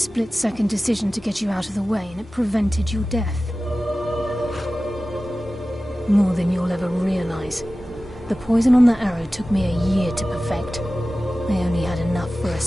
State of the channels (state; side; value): normal; both; correlation 0.96